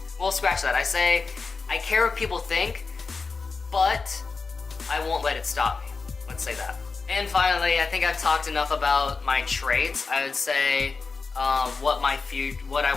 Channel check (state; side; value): quieter; right; 4.5 dB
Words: Well, scratch that. I say, I care what people think, but I won't let it stop me. Let's say that. And finally, I think I've talked enough about my traits. I would say what I